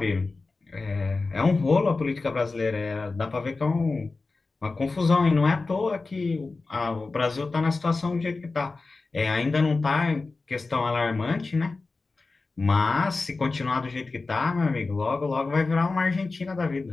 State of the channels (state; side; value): quieter; right; 3.7 dB